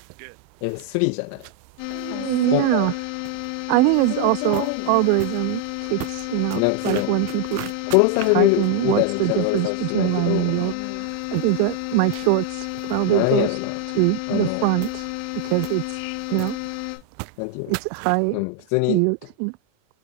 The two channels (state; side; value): different; both; correlation 0.00